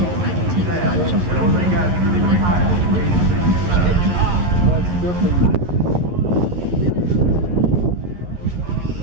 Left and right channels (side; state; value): left; late; 11 ms